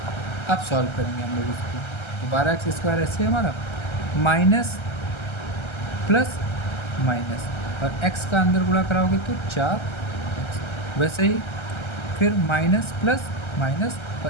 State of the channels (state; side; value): late; right; 1.3 ms